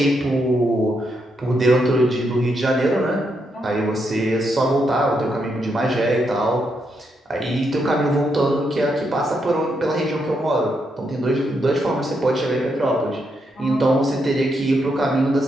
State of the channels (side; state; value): both; normal; correlation 0.80